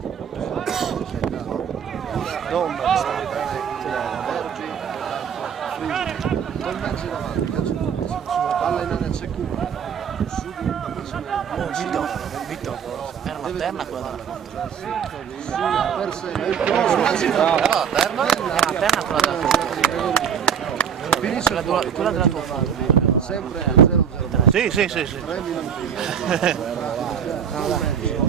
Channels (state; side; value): quieter; left; 7.9 dB